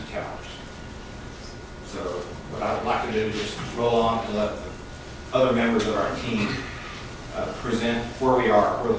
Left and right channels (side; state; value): both; identical; correlation 1.00